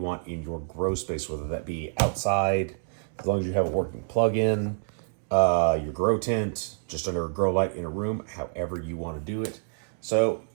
want in your grow space, whether that be outside, as long as you have a working plug-in, your grow tent, just under a grow light in a room, however you want to do it. So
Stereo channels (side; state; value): left; silent; digital silence